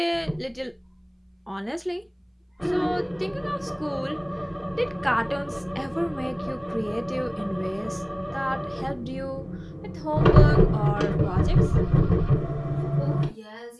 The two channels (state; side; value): identical; both; correlation 1.00